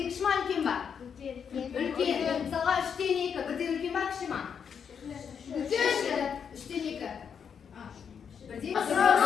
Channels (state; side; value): quieter; right; 7.1 dB